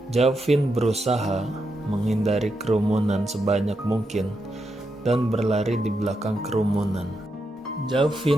Jovin berusaha menghindari kerumunan sebanyak mungkin dan berlari di belakang kerumunan.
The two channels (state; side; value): normal; both; correlation 0.84